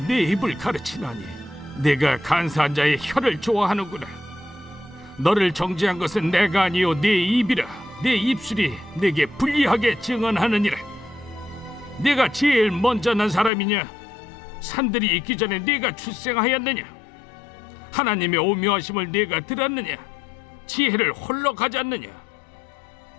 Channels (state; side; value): drops out; right; at 13.5 s